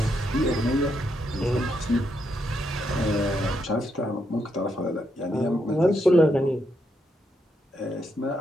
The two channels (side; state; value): both; normal; correlation 0.79